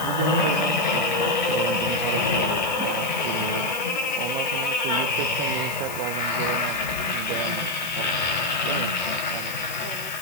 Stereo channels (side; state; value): left; noise; hiss, 11 dB below the sound